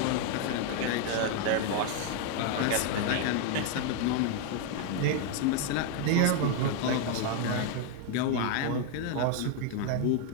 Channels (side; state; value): both; different; correlation 0.01